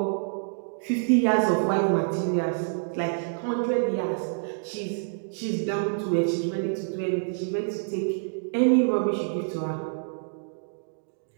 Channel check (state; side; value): silent; left; digital silence